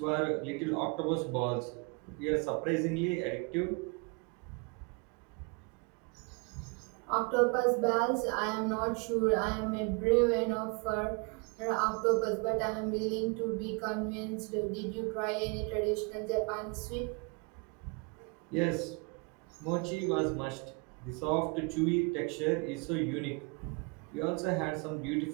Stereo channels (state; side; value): quieter; left; 32.2 dB